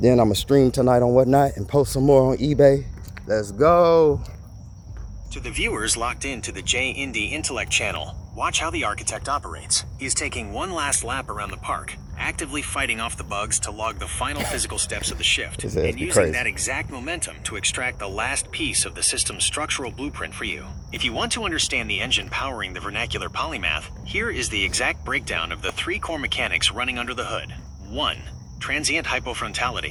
I'm gonna stream tonight on Whatnot and post some more on eBay. Let's go. To the viewers locked into the J-Indy Intellect channel, watch how the architect operates. He's taking one last lap around the park, actively fighting off the bugs to log the final physical steps of the shift, and using that exact momentum to extract the last piece of the system's structural blueprint for you. If you want to understand the engine powering the vernacular polymath, here is the exact breakdown of the 3 core mechanics running under the hood. 1. Transient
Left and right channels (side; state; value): both; identical; correlation 1.00